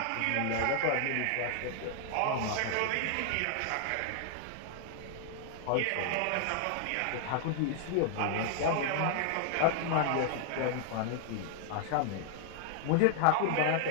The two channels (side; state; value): both; different; correlation 0.00